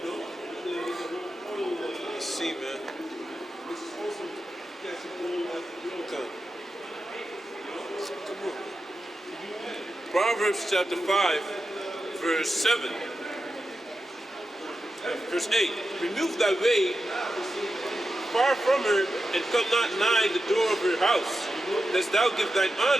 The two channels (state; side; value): normal; both; correlation 0.90